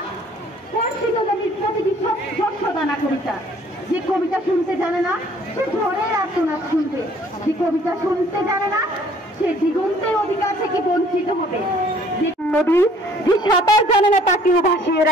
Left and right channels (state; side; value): normal; both; correlation 0.57